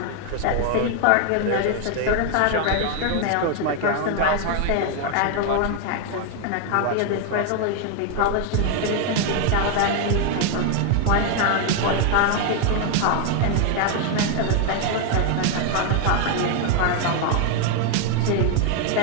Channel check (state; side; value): different; both; correlation 0.01